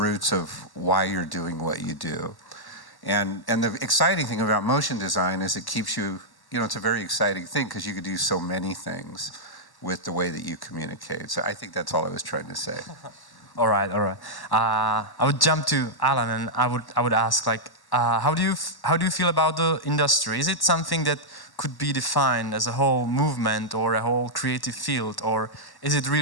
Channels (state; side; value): late; right; 1.1 ms